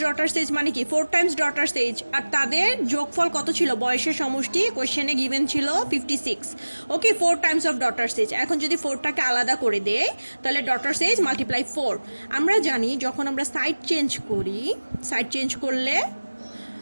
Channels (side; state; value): both; inverted; correlation -1.00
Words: ডটার এজ মানে কি 4 টাইমস ডটার এজ, আর তাদের যোগফল কত ছিল বয়সের সমষ্টি কোয়েশ্চেনে গিভেন ছিল 56। ওকে, 4 টাইমস অফ ডটার এজ। এখন যদি 4টাকে আলাদা করে দেয় তাহলে ডটার এজ মাল্টিপ্লাই 4। আমরা জানি যখন আমরা সাইড চেঞ্জ করি, সাইড চেঞ্জ করলে